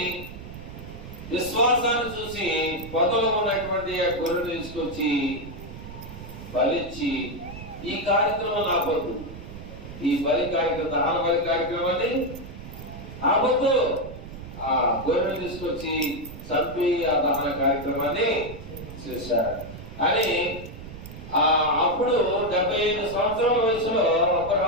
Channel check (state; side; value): noise; right; rumble, 13 dB below the sound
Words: విశ్వాసాన్ని చూసి పొదలో ఉన్నటువంటి ఆ గొర్రెను తీసుకొచ్చి బలిచ్చి, ఈ కార్యక్రమం ఆపొద్దు, ఈ బలి కార్యక్రమం, దహన బలి కార్యక్రమాన్ని ఆపొద్దు. ఆ గొర్రెను తీసుకొచ్చి చంపి ఆ దహన కార్యక్రమాన్ని చేశాడు అని. అప్పుడు 75 సంవత్సరాల వయసులో